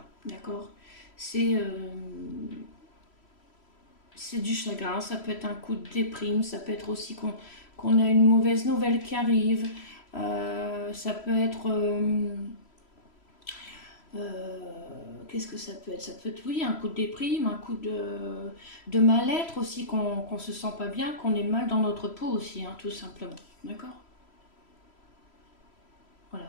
D'accord? C'est du chagrin. Ça peut être un coup de déprime. Ça peut être aussi qu'on a une mauvaise nouvelle qui arrive. Ça peut être... qu'est-ce que ça peut être? Ça peut être, oui, un coup de déprime, un coup de mal-être aussi, qu'on se sent pas bien, qu'on est mal dans notre peau aussi, hein, tout simplement. D'accord?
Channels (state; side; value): late; right; 3.1 ms